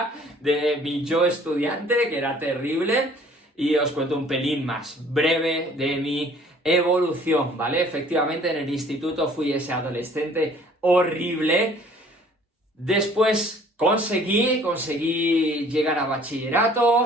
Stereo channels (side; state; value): both; normal; correlation 0.54